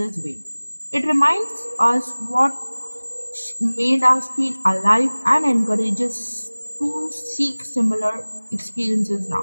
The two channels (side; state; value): both; inverted; correlation -1.00